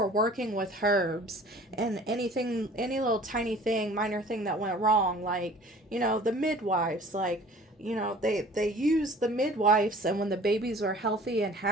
working with herbs, and anything, any little tiny thing, minor thing that went wrong, like, you know, the midwives, like, you know, they used the midwives, and when the babies were healthy and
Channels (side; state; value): both; normal; correlation 0.48